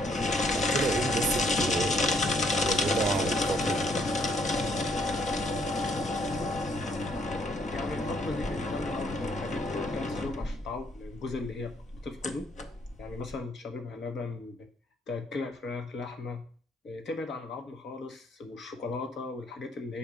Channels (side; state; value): both; normal; correlation 0.68